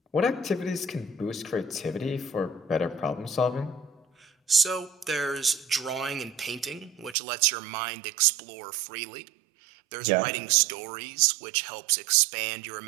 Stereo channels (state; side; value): drops out; left; at 7.2 s